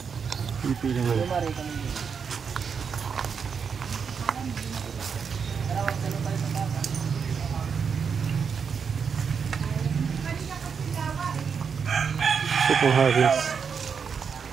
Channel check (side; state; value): left; quieter; 6.3 dB